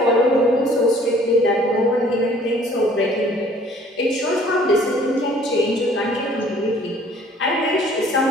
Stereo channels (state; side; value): normal; both; correlation 0.56